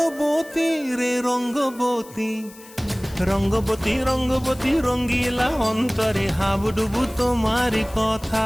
রে রঙ্গবতী, রঙ্গবতী রঙ্গবতী রঙ্গিলা অন্তরে হাবুডুবু তোমারি কথা।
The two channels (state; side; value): noise; left; hiss, 21 dB below the sound